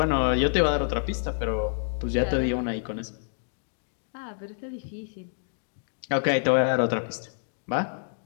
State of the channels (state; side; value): silent; right; digital silence